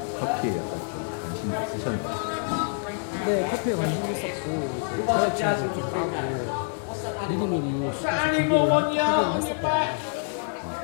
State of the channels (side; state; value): right; silent; digital silence